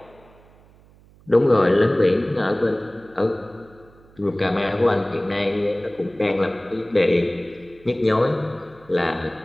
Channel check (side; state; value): right; noise; hum, 27 dB below the sound